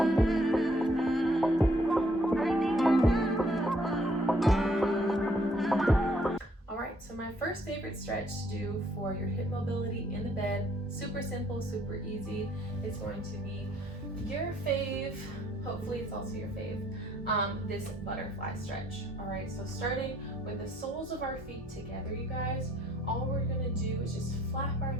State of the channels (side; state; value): both; normal; correlation 0.66